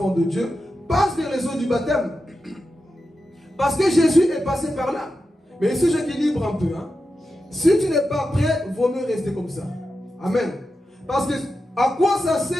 de Dieu, passe vers les eaux du baptême. Parce que Jésus est passé par là. Mais ici, j'équilibre un peu. Hein. Si tu n'es pas prêt, vaut mieux rester comme ça. Amen. Parce que à quoi ça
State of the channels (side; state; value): both; normal; correlation 0.90